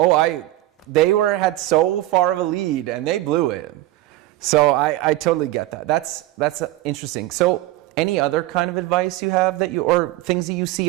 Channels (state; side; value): quieter; left; 16.3 dB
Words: They had so far of a lead, and they blew it. So I totally get that. That's interesting. So any other kind of advice you have or things that you see